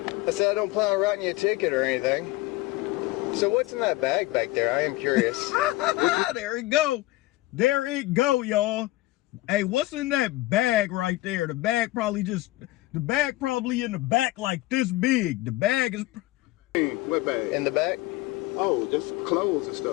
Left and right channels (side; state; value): right; quieter; 18.6 dB